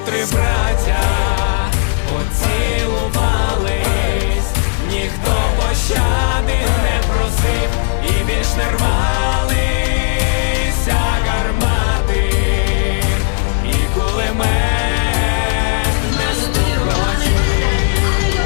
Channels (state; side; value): silent; right; digital silence